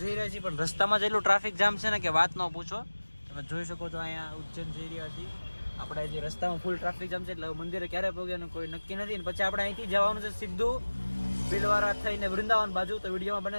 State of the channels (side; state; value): both; inverted; correlation -1.00